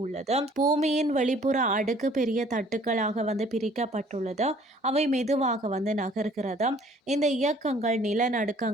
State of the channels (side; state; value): both; normal; correlation 0.56